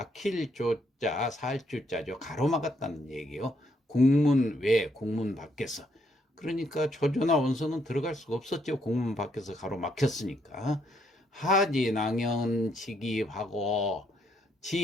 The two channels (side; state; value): both; normal; correlation 0.73